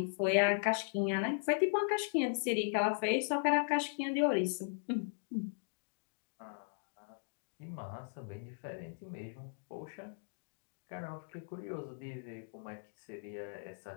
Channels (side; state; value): right; silent; digital silence